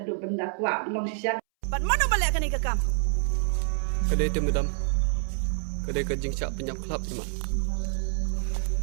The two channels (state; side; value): silent; left; 60 dB below the other